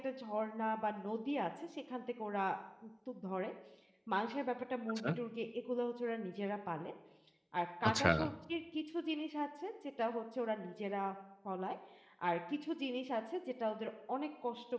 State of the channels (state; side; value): identical; both; correlation 1.00